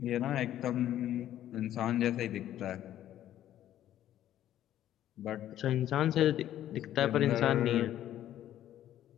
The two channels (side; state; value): right; quieter; 12.1 dB